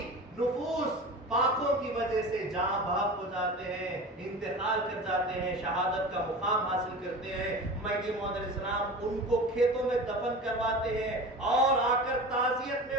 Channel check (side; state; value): both; normal; correlation 0.33